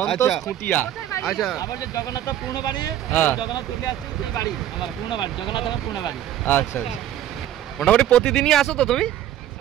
আচ্ছা। খুঁটিয়া। আচ্ছা আমার যে জগন্নাথ পূর্ণ বাড়ি, জগন্নাথ চলে আসছে সেই বাড়ি, আমার পূর্ণ বাড়ি, জগন্নাথ আমার পূর্ণ বাড়ি। আচ্ছা আচ্ছা, মোটামুটি প্রতিদিনই আসো তো তুমি?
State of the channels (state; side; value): quieter; left; 11.8 dB